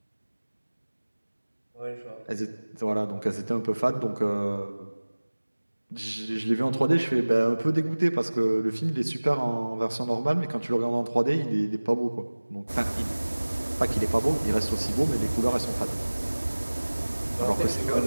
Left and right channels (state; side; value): inverted; both; correlation -1.00